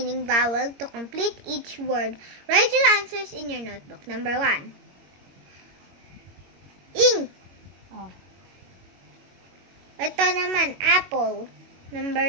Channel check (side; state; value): left; late; 21 ms